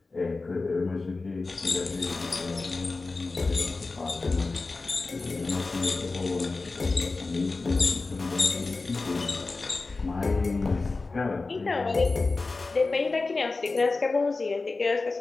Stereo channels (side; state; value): right; quieter; 3.7 dB